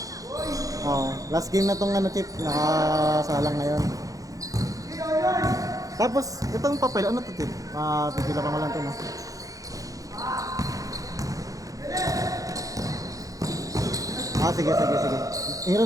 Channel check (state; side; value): late; left; 0.17 ms